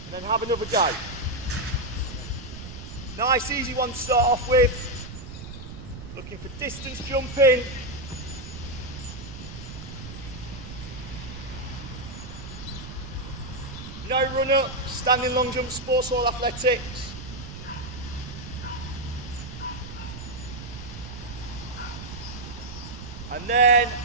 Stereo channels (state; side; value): noise; right; rumble, 11 dB below the sound